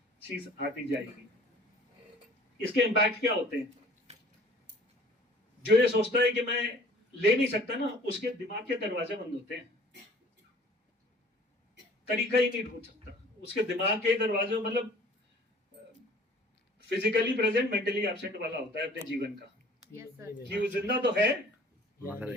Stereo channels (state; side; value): normal; both; correlation 0.51